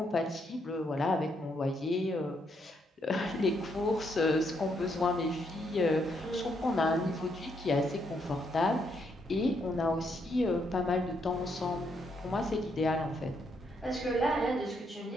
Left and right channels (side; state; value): both; normal; correlation 0.76